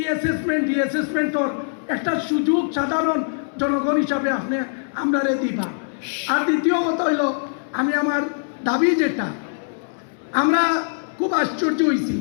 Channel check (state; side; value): silent; right; 62 dB below the other